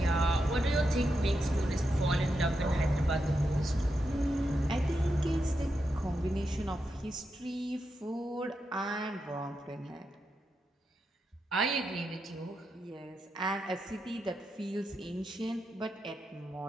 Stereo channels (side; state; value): both; normal; correlation 0.86